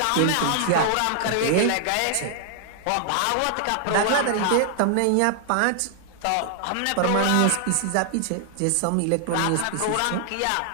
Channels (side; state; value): both; different; correlation 0.00